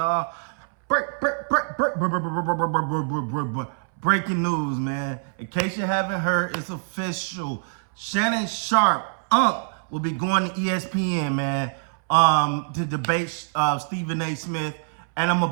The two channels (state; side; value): silent; left; 62 dB below the other